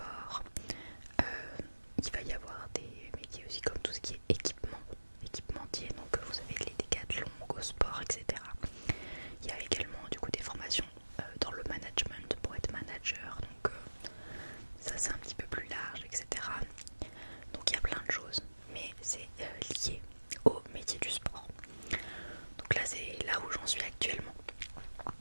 Il va y avoir des métiers aussi comme tout ce qui est équipementier. Donc vous avez les décathlons, Go Sport, etc. Il y a également du coup des formations dans le management pour être manager. Donc ça c'est un petit peu plus large, etc. Donc il y a plein de choses, mais c'est lié au métier du sport. Donc là c'est là où j'en suis actuellement.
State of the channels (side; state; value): both; inverted; correlation -1.00